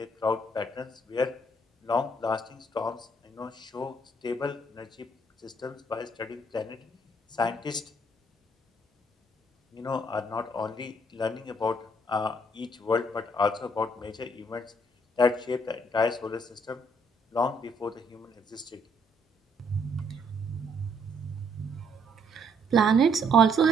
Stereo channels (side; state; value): both; normal; correlation 0.68